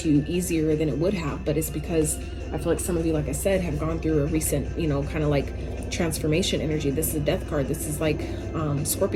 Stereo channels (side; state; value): both; identical; correlation 1.00